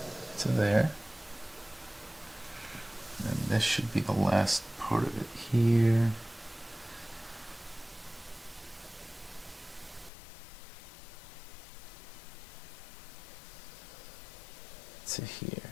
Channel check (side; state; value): right; drops out; at 10.1 s